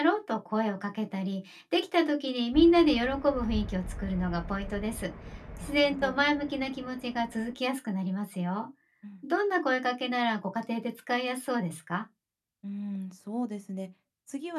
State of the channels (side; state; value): both; identical; correlation 1.00